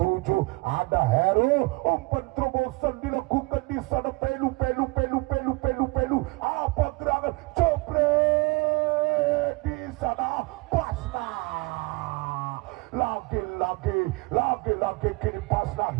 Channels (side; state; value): left; quieter; 25.7 dB